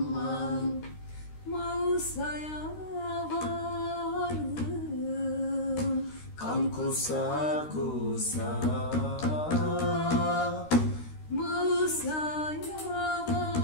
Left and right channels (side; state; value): right; late; 13 ms